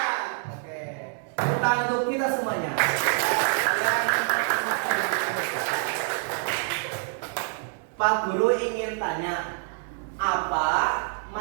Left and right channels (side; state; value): left; silent; 61 dB below the other